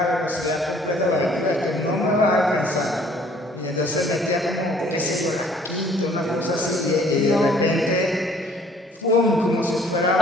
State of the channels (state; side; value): normal; both; correlation 0.58